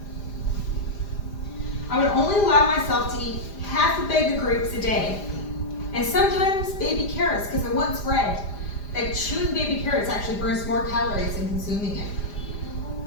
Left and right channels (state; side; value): late; right; 4.9 ms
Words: I would only allow myself to eat half a bag of grapes a day, and sometimes baby carrots, because I once read that chewing baby carrots actually burns more calories than consuming it.